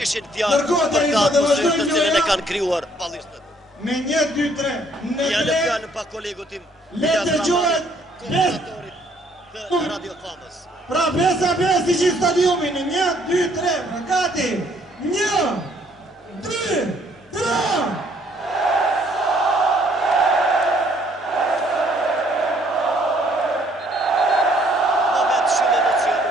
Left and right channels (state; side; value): normal; both; correlation 0.64